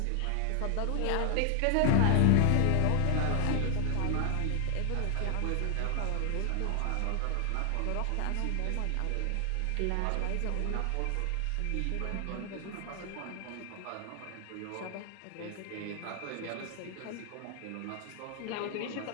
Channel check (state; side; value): different; both; correlation 0.00